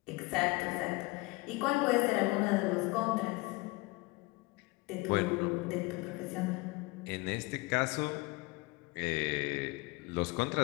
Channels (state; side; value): quieter; right; 24.1 dB